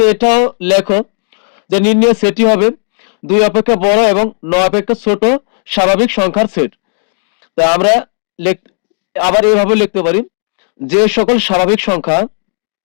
এটাও লেখো যে নির্ণয় সেটই হবে 2 অপেক্ষা বড় এবং 9 অপেক্ষা ছোট স্বাভাবিক সংখ্যার সেট। তা আমরা আবার এইভাবে লিখতে পারি, যে সকল স্বাভাবিক সংখ্যা,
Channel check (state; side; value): silent; right; digital silence